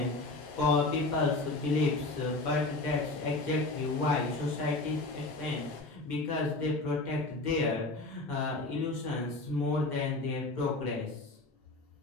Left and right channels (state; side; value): quieter; right; 3.0 dB